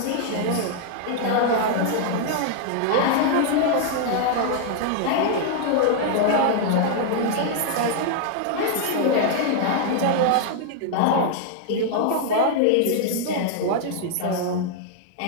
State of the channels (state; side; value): different; both; correlation 0.00